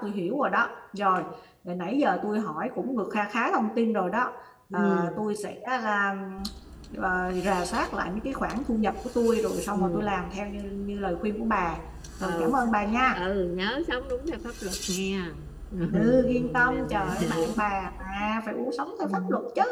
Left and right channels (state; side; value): identical; both; correlation 1.00